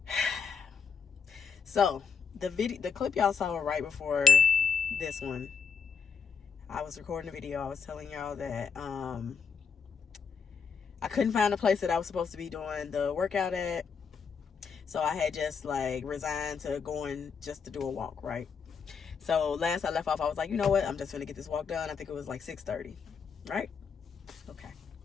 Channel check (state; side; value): quieter; right; 6.2 dB